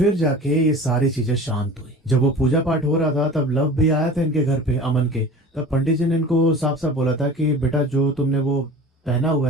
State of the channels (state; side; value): normal; both; correlation 0.39